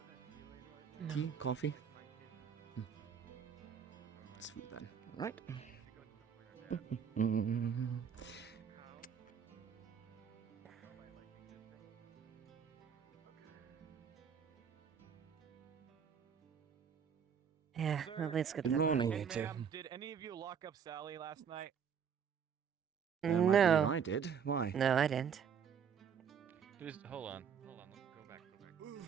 No. Tea? Coffee? It's food then, alright? Yeah, Sir, at least good Good luck. morning, Hey, you two. ma'am, did any of you lock up Sally last night? I believe No. I did. Why? No, I didn't. Hold on. Go back.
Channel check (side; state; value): left; quieter; 7.4 dB